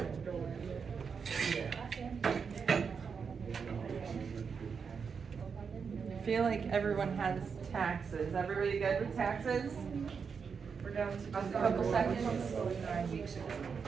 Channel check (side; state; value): left; quieter; 6.0 dB